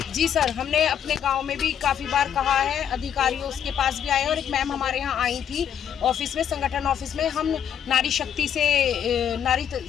जी सर, हमने अपने गाँव में भी काफ़ी बार कहा है, अधिकारियों उसके पास भी आए और एक मैम हमारे यहाँ आई थी ऑफिस में, संगठन ऑफिस में। हम नारी शक्ति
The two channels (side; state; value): right; quieter; 8.9 dB